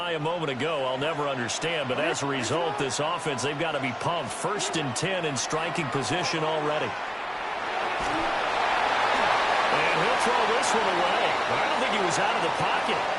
a moment ago, I'll never understand. But as a result, this offense, they've got to be pumped. 1st and 10 in striking position already. And he'll throw this one away. But I don't think he was out of the pocket.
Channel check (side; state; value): both; identical; correlation 1.00